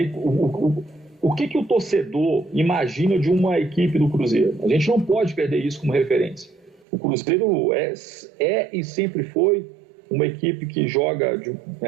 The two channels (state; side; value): drops out; left; at 6.9 s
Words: o que o torcedor imagina de uma equipe do Cruzeiro. A gente não pode perder isso como referência. O Cruzeiro é e sempre foi uma equipe que joga